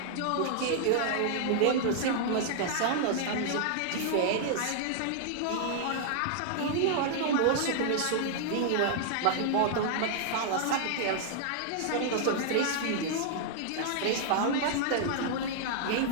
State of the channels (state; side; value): different; both; correlation -0.01